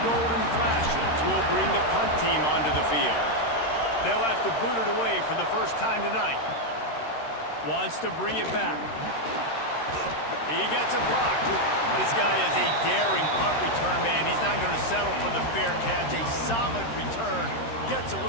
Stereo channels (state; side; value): late; right; 13 ms